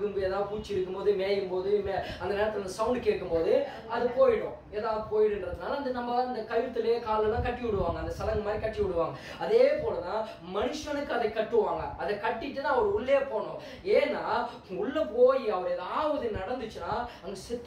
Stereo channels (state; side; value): identical; both; correlation 1.00